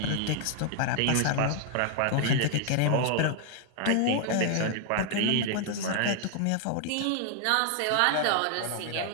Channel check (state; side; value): different; both; correlation 0.00